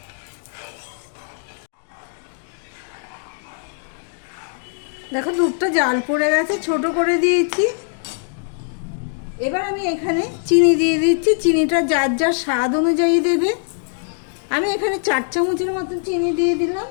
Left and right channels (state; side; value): silent; right; digital silence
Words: দেখো, দুধটা জাল পড়ে গেছে, ছোট করে দিয়েছি। এবার আমি এখানে চিনি দিয়ে দিচ্ছি। চিনিটা যার যার স্বাদ অনুযায়ী দেবে। আমি এখানে 4 চামচের মতন চিনি দিয়ে দিলাম।